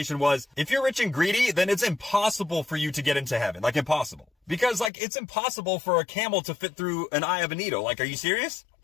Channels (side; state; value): right; drops out; at 4.9 s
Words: was, if you're rich and greedy, then it's impossible for you to get into heaven. Like impossible. Because it's impossible for a camel to fit through an eye of a needle. Like, are you serious?